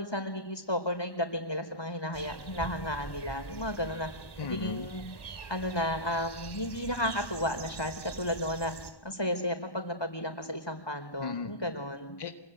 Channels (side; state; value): right; late; 1.1 ms